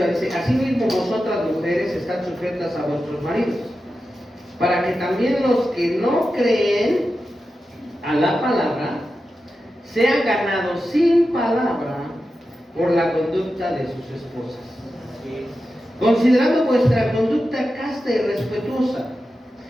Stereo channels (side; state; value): both; normal; correlation 0.91